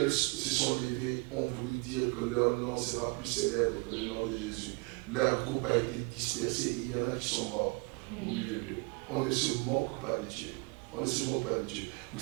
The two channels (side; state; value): left; quieter; 30.4 dB